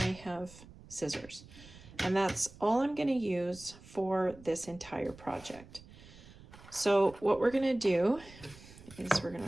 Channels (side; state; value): right; noise; rumble, 20 dB below the sound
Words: have scissors, and that's all I'm going to use for this entire project. So what we're going to do is we're going